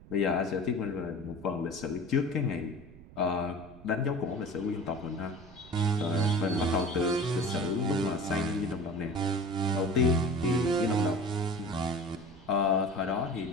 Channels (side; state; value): right; noise; rumble, 20 dB below the sound